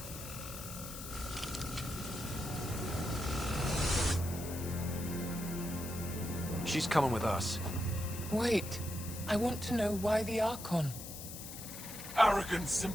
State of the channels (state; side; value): noise; left; hiss, 10 dB below the sound